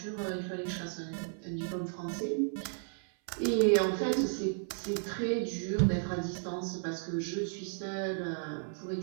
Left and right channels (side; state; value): left; silent; 55 dB below the other